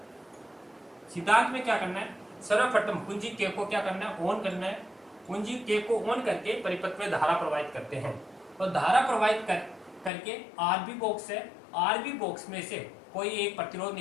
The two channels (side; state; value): right; drops out; at 10.1 s